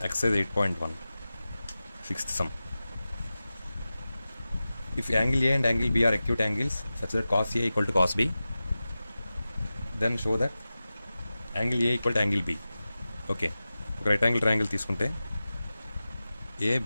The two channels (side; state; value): both; inverted; correlation -0.95